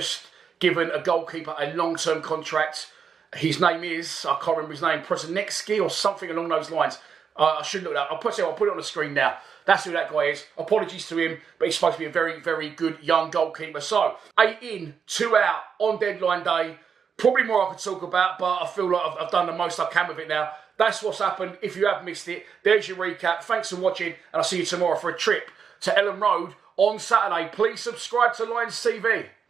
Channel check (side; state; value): left; quieter; 6.7 dB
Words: given a goalkeeper a long-term contract. His name is, I can't remember his name, Prosinecki or something along those lines. I should look it up. I'll put it on the screen now. That's who that guy is. Apologies to him, but he's supposed to be a very, very good young goalkeeper. So, 8 in, 2 out on deadline day. Probably more I could talk about, but I feel like I've done the most I can with it now. That's what's happened. If you have missed it, there's your recap. Thanks for watching, and I'll see you tomorrow for a trip to Ellen Road on Saturday. Please subscribe to Lions TV.